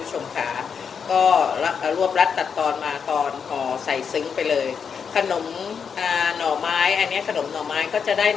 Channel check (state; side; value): quieter; right; 6.6 dB